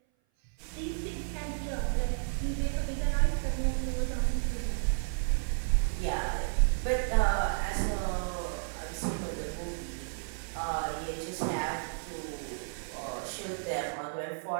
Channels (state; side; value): silent; left; 56 dB below the other